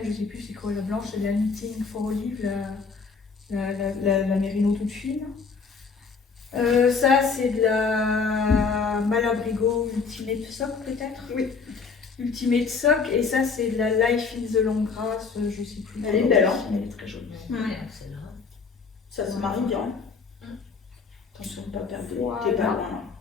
je sais plus c'est quoi la blanche, c'est la Knitting for Olive, la mérino toute fine. Ça c'est de la Malabrigo Ultimate Sock peut-être. Oui. Ultimate Sock et ça c'est de la Life in the Long Grass, je sais plus. Elle est belle, hein. Elle est très jolie. Ça se marie bien. Attention de ne pas perdre. Voilà. T'es pas loin là.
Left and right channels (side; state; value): right; quieter; 5.1 dB